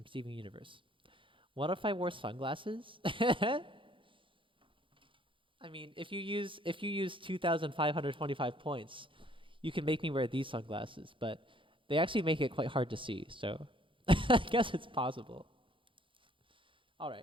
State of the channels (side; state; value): left; late; 0.25 ms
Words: Steven Universe. What if I wore sunglasses? I mean, if you use 2,525 points, you can make me wear these sunglasses, but they actually make it quite hard to see, so I guess it's possible. All